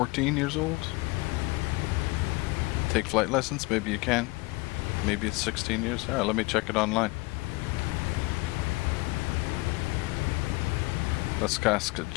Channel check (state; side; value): quieter; right; 23.8 dB